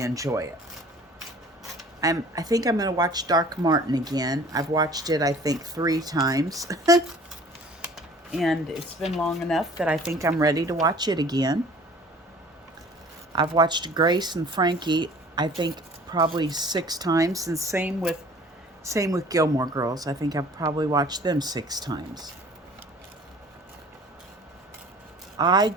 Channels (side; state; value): both; normal; correlation 0.49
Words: enjoy it. I think I'm going to watch Dark Martin again. I've watched it, I think, 3 times. And it's been long enough that I think I'm ready to watch it again. I've watched Grace and Frankie, I think, probably 6 times. And same with Gilmore Girls. I think I've probably watched them 6 times. I